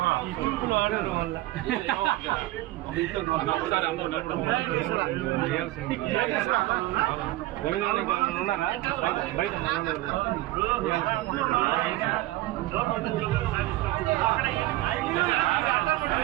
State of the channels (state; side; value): quieter; left; 17.4 dB